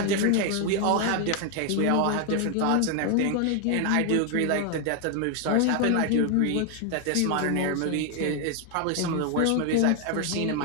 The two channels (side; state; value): both; different; correlation 0.01